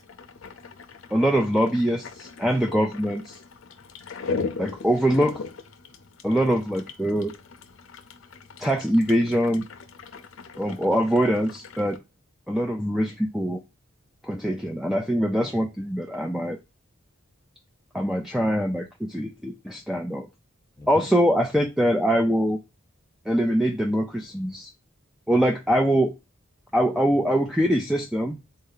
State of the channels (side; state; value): both; normal; correlation 0.86